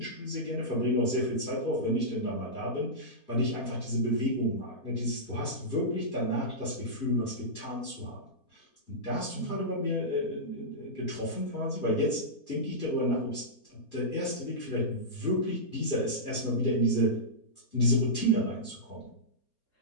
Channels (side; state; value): right; late; 4.3 ms